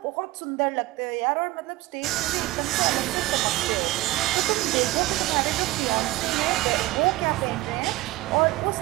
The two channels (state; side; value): quieter; left; 18.6 dB